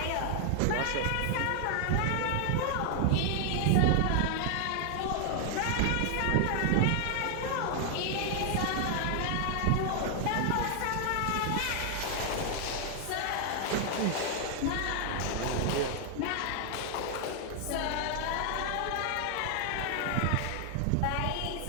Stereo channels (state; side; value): different; both; correlation 0.00